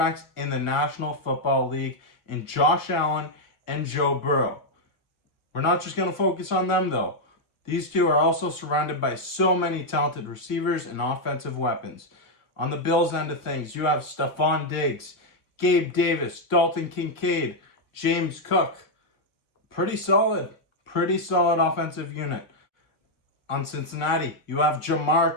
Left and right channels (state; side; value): late; right; 1.6 ms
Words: in the National Football League in Josh Allen and Joe Burrow. We're not just going to focus on them though. These 2 are also surrounded by so many talented receivers and offensive weapons. On the Bills end of things, you have Stephon Diggs, Gabe Davis, Dalton Kincaid, James Cook. Pretty solid offensive unit. On Cincinnati, you have Jamar